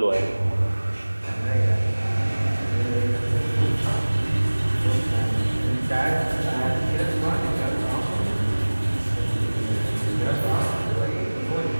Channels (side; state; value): both; inverted; correlation -1.00